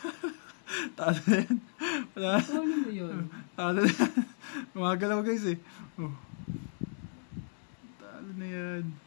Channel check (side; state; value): right; silent; digital silence